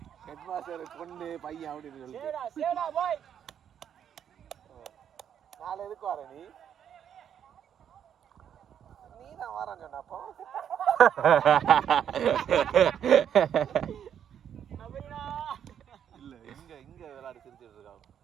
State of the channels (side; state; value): left; quieter; 9.0 dB